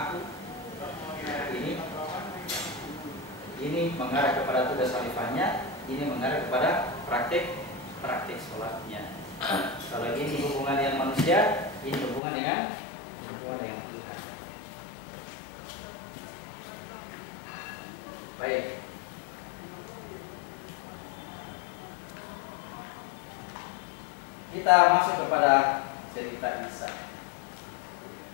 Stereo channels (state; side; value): drops out; right; at 12.2 s